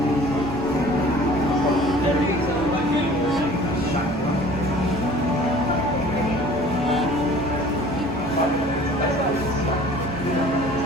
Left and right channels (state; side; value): normal; both; correlation 0.48